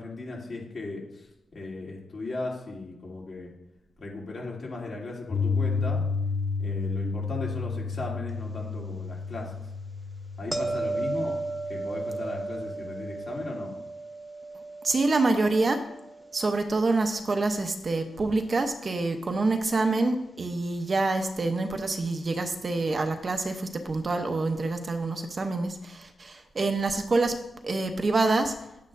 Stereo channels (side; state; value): both; normal; correlation 0.87